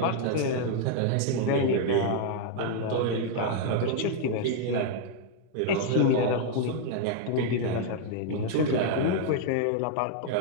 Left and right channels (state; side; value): different; both; correlation 0.00